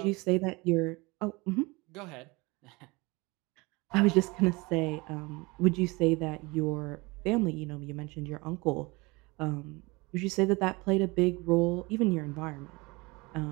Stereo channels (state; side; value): quieter; left; 24.9 dB